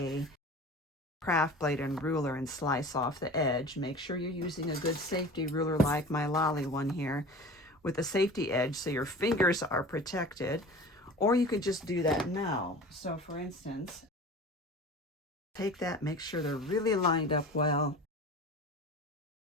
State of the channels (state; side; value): normal; both; correlation 0.38